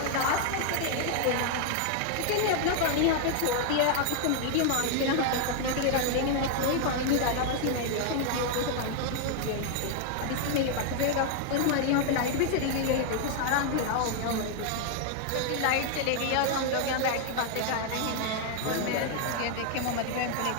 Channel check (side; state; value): both; different; correlation 0.00